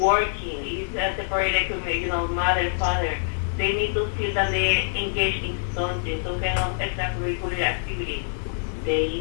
it's a separated community, mother, father. They need to feel that they engage in something, some kind of extracurricular activity.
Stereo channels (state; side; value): silent; right; digital silence